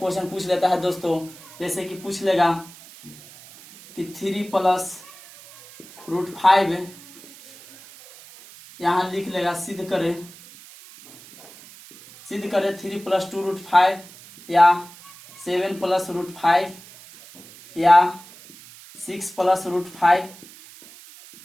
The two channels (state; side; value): noise; right; hiss, 20 dB below the sound